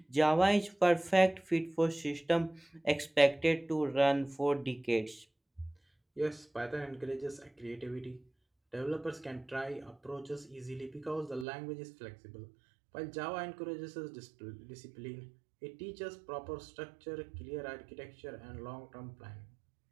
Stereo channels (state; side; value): drops out; left; at 11.5 s